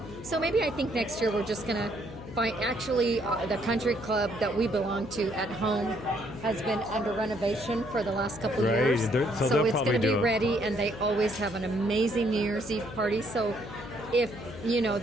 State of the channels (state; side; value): noise; left; hum, 13 dB below the sound